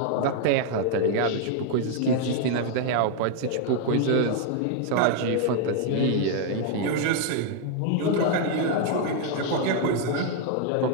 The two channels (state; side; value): different; both; correlation 0.00